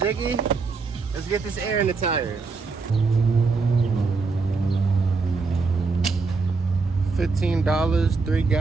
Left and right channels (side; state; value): left; quieter; 4.3 dB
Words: Let's get this air in the tires. 15 $3